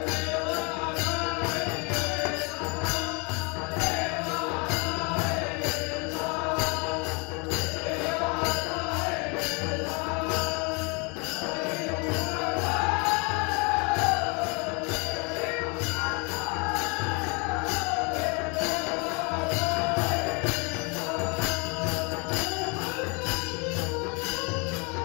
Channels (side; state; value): right; quieter; 31.1 dB